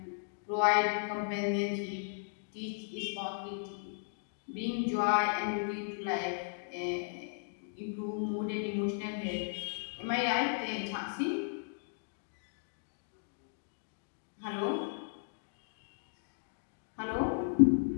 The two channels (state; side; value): silent; right; digital silence